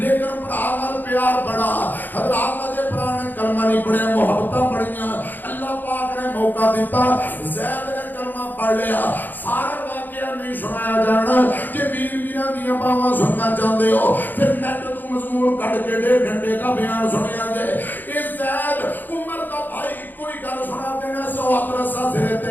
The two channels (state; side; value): late; right; 0.088 ms